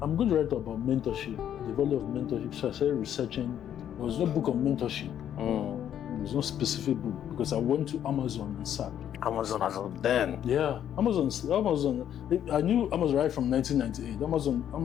going to write about mentorship, the value of mentorship. So I started researching. There was no book on mentorship. There was no specific book, because I went to Amazon and sat. Amazon as of then? Yeah, Amazon. I knew Amazon right from 1998.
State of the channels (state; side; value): quieter; right; 10.1 dB